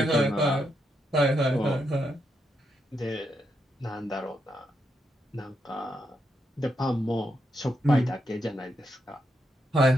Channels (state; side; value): normal; both; correlation 0.81